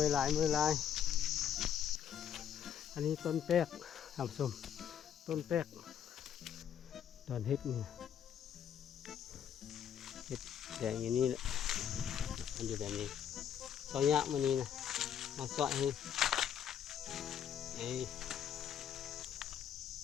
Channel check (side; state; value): right; quieter; 9.1 dB